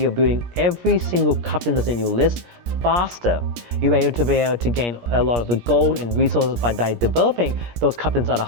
building every single captain that's in your list faster. You're able to gain a lot of the gold and resources by developing those captains at a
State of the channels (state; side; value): late; left; 17 ms